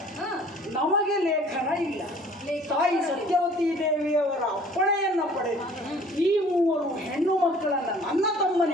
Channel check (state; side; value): normal; both; correlation 0.52